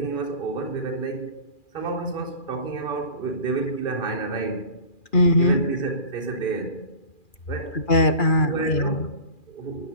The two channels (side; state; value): right; late; 2.4 ms